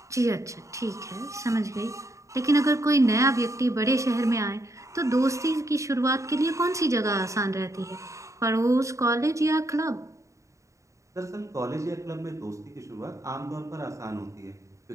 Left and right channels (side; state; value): left; late; 0.15 ms